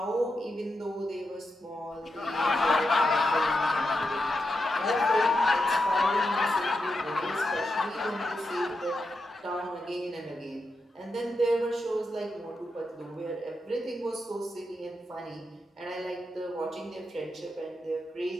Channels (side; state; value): both; normal; correlation 0.87